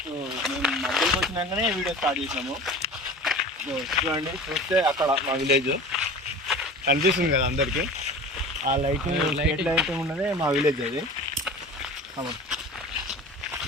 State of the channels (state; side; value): normal; both; correlation 0.38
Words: మేము మధ్యలోకి వచ్చినాకనే వీడియో స్టార్ట్ చేసినాము. చూడండి, చూస్తే అక్కడ మా విలేజ్ కనిపిస్తుంది కదా అందరికీ. ఆ లైటింగ్ స్ట్రీట్ లైట్ ఉన్నదే మా విలేజ్. అది